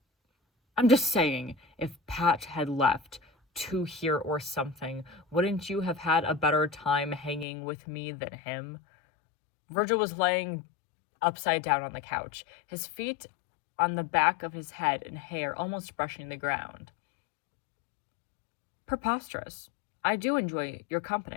I'm just saying, if Pat had left, two here or something. Wouldn't you have had a better time hanging with me than him? Virgil was laying upside down on the couch, his feet on the back of his head and hair almost brushing the ground. Preposterous. I do enjoy your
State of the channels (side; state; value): right; drops out; at 7.5 s